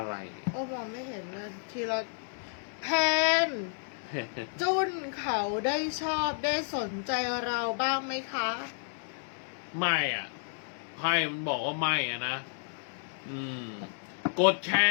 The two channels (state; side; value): silent; right; digital silence